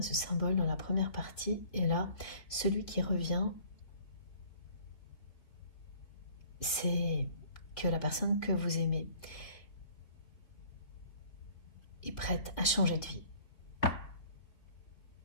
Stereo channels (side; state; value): right; late; 3.9 ms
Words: ce symbole dans la première partie, et là, celui qui revient, c'est que la personne que vous aimez est prête à changer de vie.